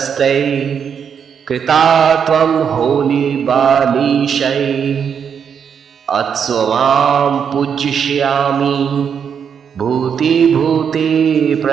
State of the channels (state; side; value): quieter; left; 7.3 dB